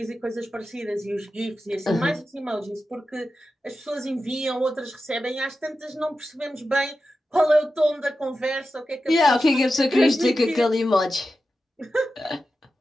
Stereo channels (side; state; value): both; normal; correlation 0.92